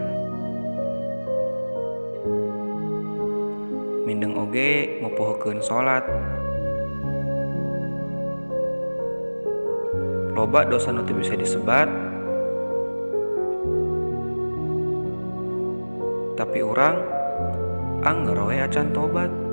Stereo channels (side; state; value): both; inverted; correlation -1.00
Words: Mindeng oge ngupuhkeun salat. Loba dosa nu teu bisa disebat. Tapi urang angger we acan tobat.